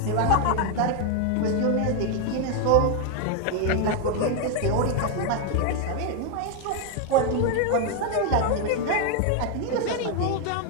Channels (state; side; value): different; both; correlation 0.01